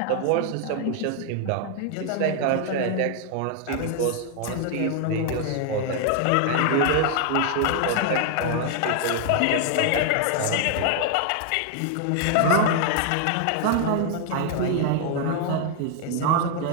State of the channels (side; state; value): both; different; correlation 0.00